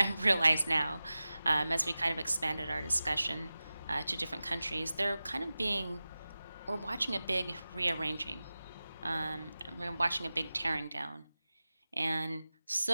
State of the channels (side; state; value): both; inverted; correlation -0.96